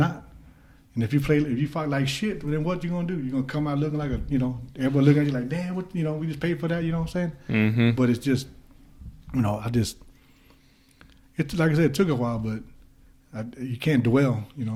And if you fight like shit, then what you gonna do? You're gonna come out looking like a, you know, everybody looking at you like, damn, what, you know, we just paid for that, you know what I'm saying? Mm-hmm. But it's just, you know, it's like I said, it took a while, but you can't dwell, you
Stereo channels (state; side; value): identical; both; correlation 1.00